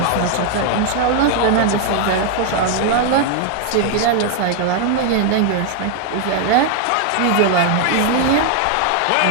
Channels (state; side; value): different; both; correlation 0.00